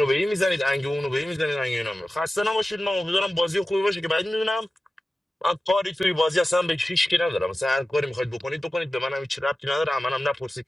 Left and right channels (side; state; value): both; normal; correlation 0.95